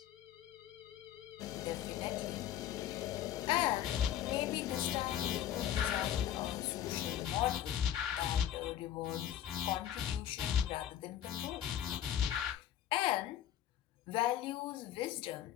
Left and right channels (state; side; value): quieter; right; 10.9 dB